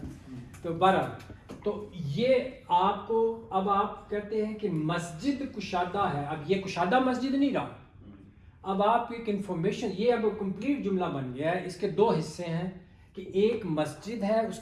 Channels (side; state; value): both; identical; correlation 1.00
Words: تو بہرحال تو یہ آپ کو اب آپ کہتے ہیں کہ مسجد کشادہ ہے. اب یہ کشادہ مسجد نہیں رہا. اب آپ ایک انفارمیشن یہ اب کمپلیٹ جملہ بن گیا ہے. اس کے دو حصے ہیں کہ ایک مسجد ہے اس